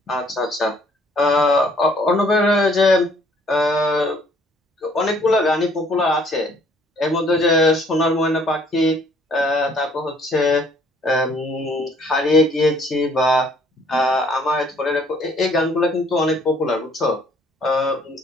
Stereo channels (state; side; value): normal; both; correlation 0.61